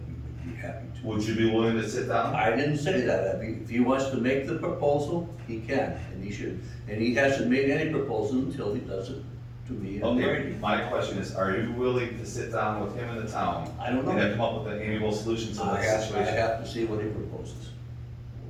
we would be happy to. Would you be willing to sit down? I didn't say that. If he wants to make the proposal, he can, and he should. And he hasn't made any proposal until he does it to me and Okay, Brady. my question is, are you willing to sit down with him and the town? I don't know. And then come up with an amiable solution to I this have situation? to see what he proposes.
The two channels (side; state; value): both; identical; correlation 1.00